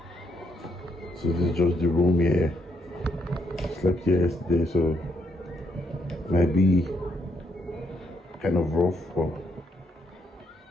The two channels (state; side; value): normal; both; correlation 0.75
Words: So this is just the room here. Slept here yesterday, so might be kind of rough, but